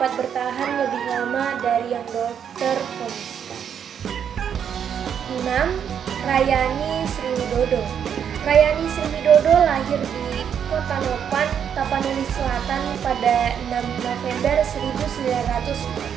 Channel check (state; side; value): quieter; left; 8.2 dB